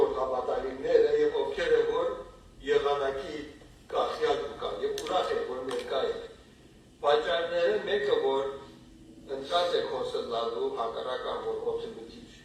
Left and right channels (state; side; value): identical; both; correlation 1.00